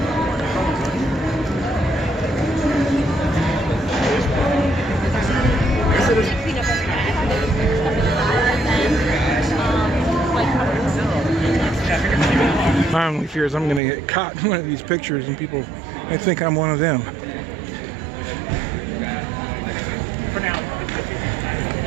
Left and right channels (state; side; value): drops out; left; at 13.8 s